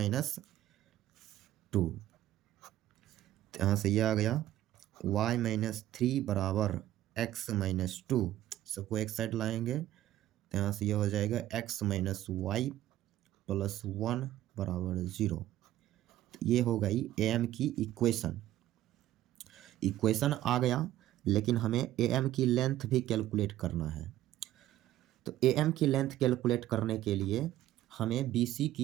यहाँ से ये आ गया y-3 बराबर x-2, सबको एक साइड लाएंगे तो यहाँ से ये हो जाएगा x-y + 1 बराबर 0। ये हो गई ए एम की इक्वेशन आ गया, लेकिन हमें ए एम की लेंथ भी कैलकुलेट करना है। तो ए एम की लेंथ कैलकुलेट करने के लिए हमें बी सी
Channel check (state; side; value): quieter; left; 13.8 dB